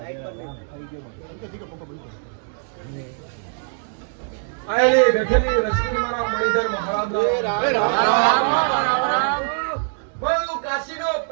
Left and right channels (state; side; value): silent; left; 64 dB below the other